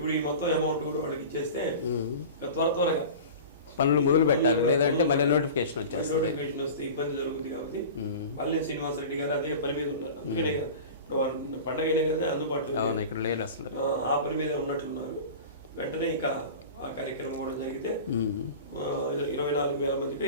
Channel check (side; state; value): both; inverted; correlation -0.35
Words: ఈ మొత్తం అమౌంట్ కూడా వాళ్ళకి ఇచ్చేస్తే త్వరగా పనులు మొదలు పెట్టాలి, లేదంటే మళ్ళీ నోటిఫికేషన్ వచ్చేస్తుంది. నోటిఫికేషన్ వస్తే ఇబ్బంది జరుగుతుంది కాబట్టి మళ్ళీ శ్రీనివాసరెడ్డి గారు అదే పని మీద ఉన్నారు. అందుకనే కదా ఇప్పుడు పండగ అయినా కదా అందుబాటులో ఇక్కడ లేదు అసలు, ఆ పని మీద ఉన్నట్లున్నారు. వెంటనే ఇక ఆ కార్యక్రమం కూడా జరిగితే 24,000 మందికో